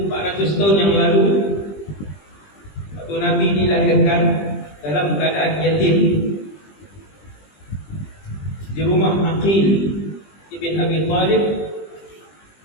tahun yang lalu, waktu Nabi dilahirkan dalam keadaan yatim di rumah Aqil ibn Abi Talib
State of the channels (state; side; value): late; right; 20 ms